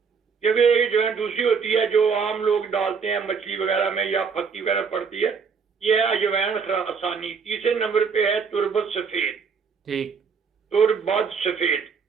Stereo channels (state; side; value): quieter; left; 5.8 dB